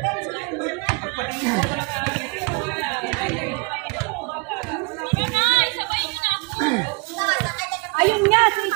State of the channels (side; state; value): left; quieter; 29.6 dB